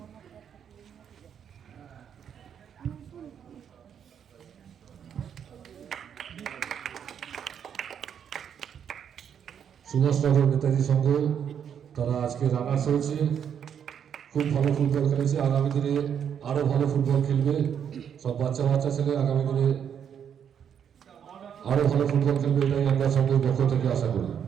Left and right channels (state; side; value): quieter; left; 8.3 dB